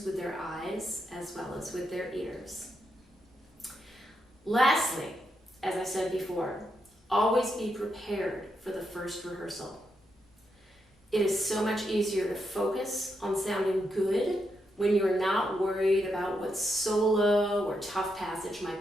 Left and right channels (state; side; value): normal; both; correlation 0.82